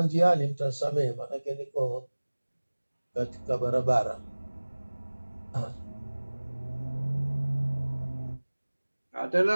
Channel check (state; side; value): inverted; both; correlation -1.00